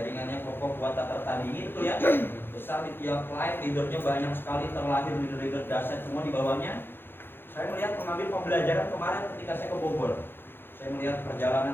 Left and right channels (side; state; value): right; late; 0.10 ms